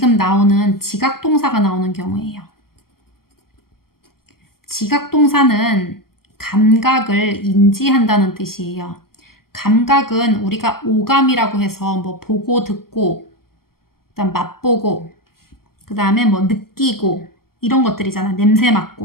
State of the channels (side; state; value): right; late; 0.93 ms